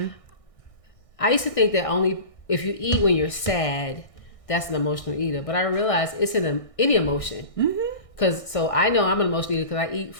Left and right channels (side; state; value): right; late; 1.6 ms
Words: I used to think that only if you eat when you're sad, that's an emotional eater. But I realized it's in any emotion. So I know I'm an emotional eater because I eat